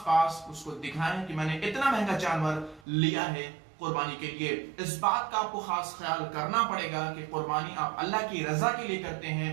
उसको दिखाएं कि मैंने इतना महंगा जानवर लिया है कुर्बानी के लिए। इस बात का आपको खास ख्याल करना पड़ेगा कि कुर्बानी आप अल्लाह की रजा के लिए करते हैं,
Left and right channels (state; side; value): drops out; left; at 2.8 s